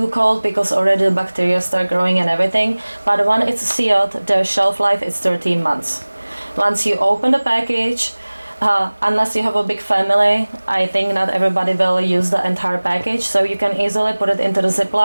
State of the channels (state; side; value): inverted; both; correlation -1.00